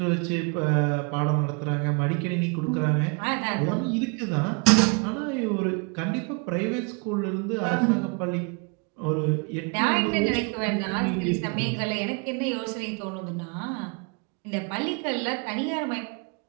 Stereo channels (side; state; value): left; quieter; 33.2 dB